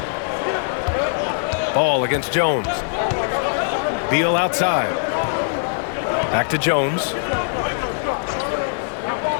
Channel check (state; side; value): silent; right; digital silence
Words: Ball against Jones. Beal outside. Back to Jones.